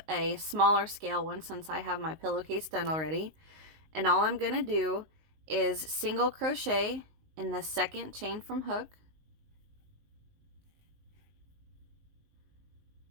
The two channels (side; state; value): left; late; 19 ms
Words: a smaller scale one since I have my pillowcase done already. And all I'm going to do is single crochet in the second chain from hook,